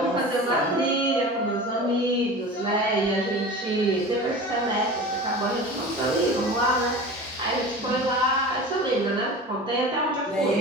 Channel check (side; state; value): both; normal; correlation 0.34